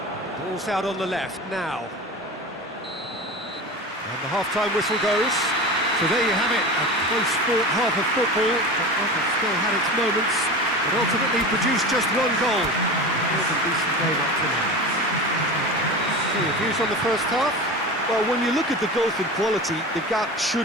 Ball's out on the left now. And the half-time whistle goes. So there you have it, a close-fought half of football that still had its moments, but ultimately produced just one goal. It was a decent game up to now. So your views on the first half? Well, when you look at the gulf in quality, the gap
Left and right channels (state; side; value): normal; both; correlation 0.30